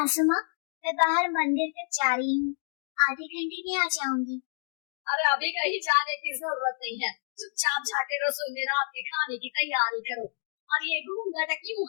माँ, मैं बाहर मंदिर तक जा रही हूँ, आधे घंटे में आ जाऊंगी। अरे अभी कहीं जाने की जरूरत नहीं है, चुपचाप जाके रसोई में रात के खाने की तैयारी करो। और ये घूंघट क्यों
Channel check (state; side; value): silent; right; digital silence